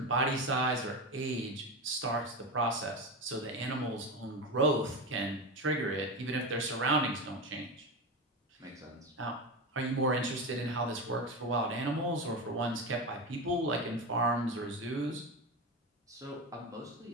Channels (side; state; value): both; normal; correlation 0.19